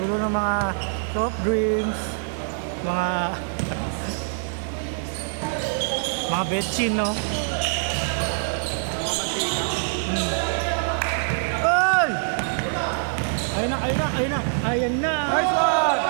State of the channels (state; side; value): silent; left; digital silence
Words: ng mga soft drinks, mga betchin, no? Ay! Ayun na, ayun na, ayun na, ayan na! Nice one!